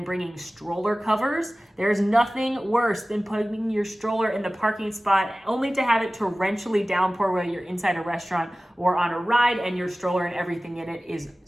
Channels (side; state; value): both; normal; correlation 0.97